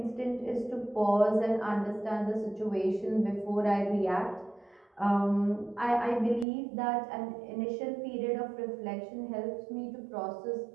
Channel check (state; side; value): drops out; left; at 6.5 s